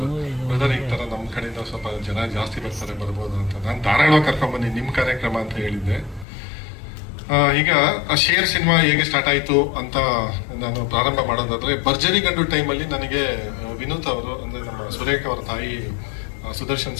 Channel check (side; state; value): right; drops out; at 6.2 s